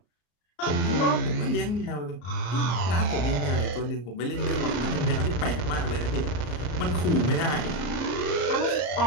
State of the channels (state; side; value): late; right; 34 ms